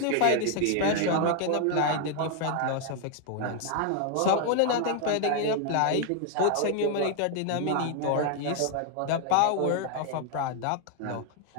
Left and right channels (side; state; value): both; different; correlation 0.00